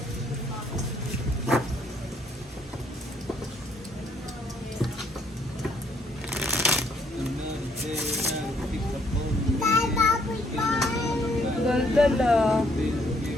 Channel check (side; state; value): both; normal; correlation 0.68